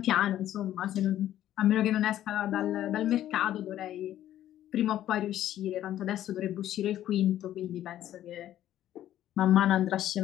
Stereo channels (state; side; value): quieter; right; 12.4 dB